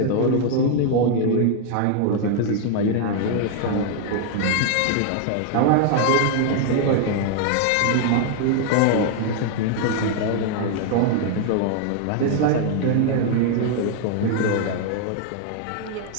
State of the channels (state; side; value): different; both; correlation 0.00